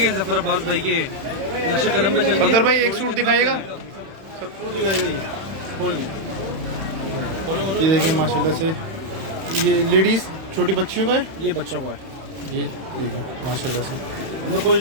जफर अब्बास भाई के नक्शे कदम पे चल। सफदर भाई एक सूट दिखाइएगा। ये देखिए माशाल्लाह से, ये लेडीज छोटी बच्चियों का है, ये बच्चों का है। ये देखिए माशाल्लाह से। हमने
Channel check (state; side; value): late; left; 31 ms